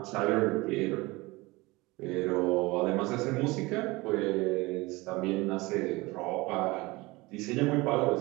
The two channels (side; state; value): left; quieter; 22.5 dB